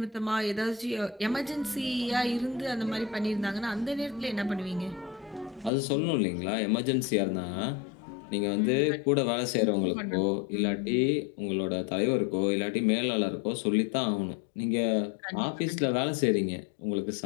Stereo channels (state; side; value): drops out; right; at 5.7 s